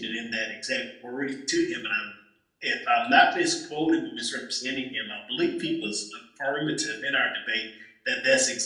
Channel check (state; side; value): identical; both; correlation 1.00